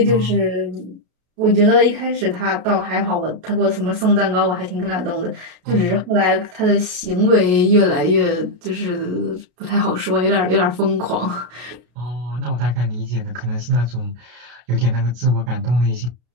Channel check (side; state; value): left; late; 33 ms